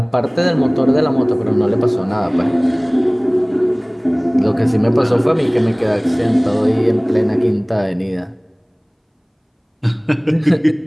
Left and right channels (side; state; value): both; identical; correlation 1.00